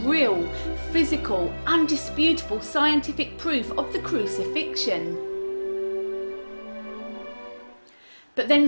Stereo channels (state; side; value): inverted; both; correlation -1.00